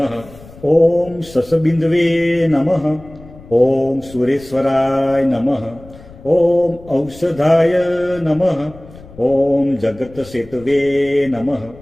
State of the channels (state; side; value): noise; left; rumble, 20 dB below the sound